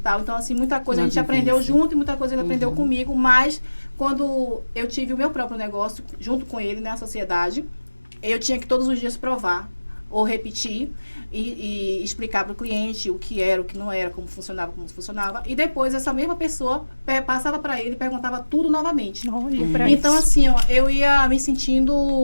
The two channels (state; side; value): inverted; both; correlation -1.00